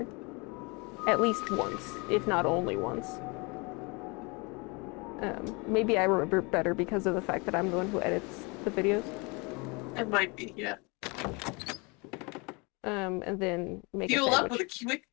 at least once, if not only once. Maybe I remember better because of the fact that I'm the one who edits the videos. It might be, yeah. And then make Fuel a sandwich. up with a quick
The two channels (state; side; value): quieter; right; 28.9 dB